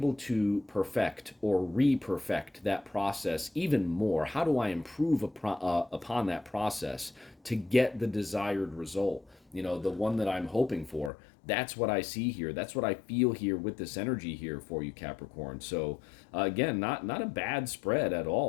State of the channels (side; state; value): right; drops out; at 11.1 s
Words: to perfect or re-perfect that process even more? How do I improve upon that process to get the desired result? The one that I'm hoping for. That's what I see here. That's what I feel here with this energy here for you, Capricorn. So again, not a bad spread at